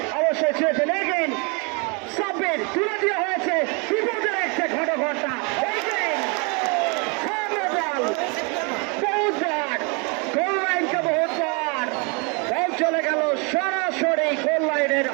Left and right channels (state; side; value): quieter; left; 33.3 dB